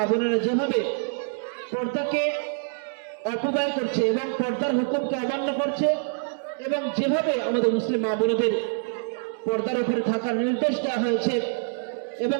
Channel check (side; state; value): left; silent; digital silence